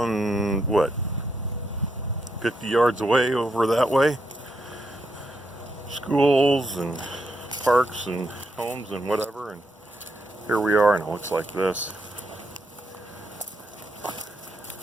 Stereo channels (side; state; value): both; normal; correlation 0.80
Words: what, 50 yards away over that way. Schools and parks and homes and whatever, and here we are, and it looks like this.